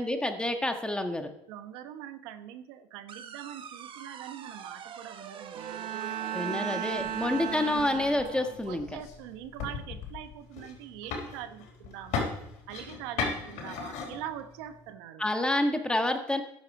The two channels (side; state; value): both; normal; correlation 0.66